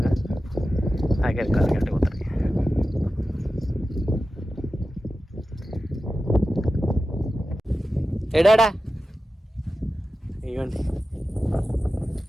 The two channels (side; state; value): both; normal; correlation 0.93